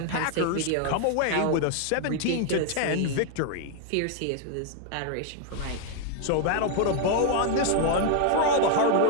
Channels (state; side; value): different; both; correlation 0.00